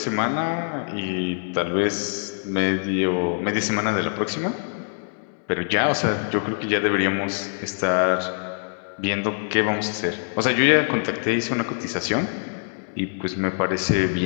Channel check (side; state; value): right; silent; digital silence